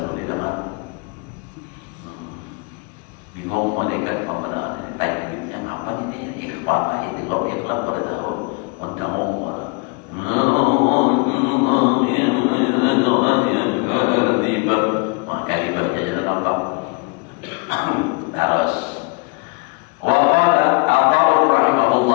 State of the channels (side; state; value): right; quieter; 30.6 dB